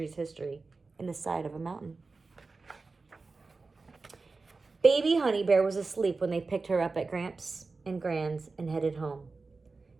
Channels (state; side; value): quieter; left; 4.0 dB